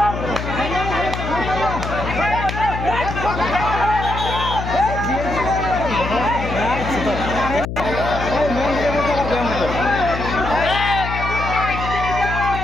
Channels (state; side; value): noise; left; hum, 5 dB below the sound